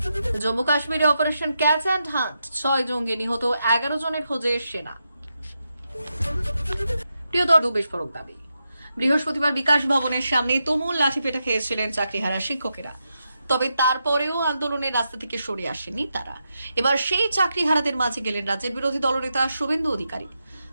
জম্মু কাশ্মীরে অপারেশন ক্যাচ অ্যান্ড হান্ট, 6 জঙ্গি নিহত, 11 জনের খোঁজে সেনা। প্রিয়তর বিস্ফোরক দাবি। বৃহস্পতিবার বিকাশ ভবনের সামনে তুমুল লাঠিপেটা খেয়েছিলেন চাকরিহারা শিক্ষকেরা, তবে তারপরেও আন্দোলনের রাস্তা থেকে সরে আসেনি তারা। এবার সেই চাকরিহারাদের মাঝে গেলেন রাজ্যের বিরোধী দলনেতা শুভেন্দু অধিকারী।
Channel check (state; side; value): inverted; both; correlation -0.86